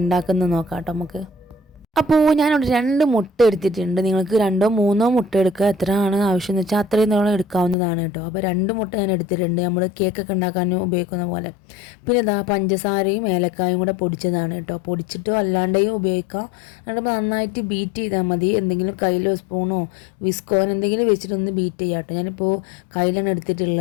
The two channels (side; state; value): right; drops out; at 7.8 s